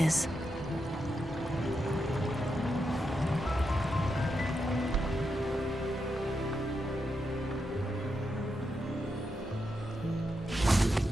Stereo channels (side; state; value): both; normal; correlation 0.85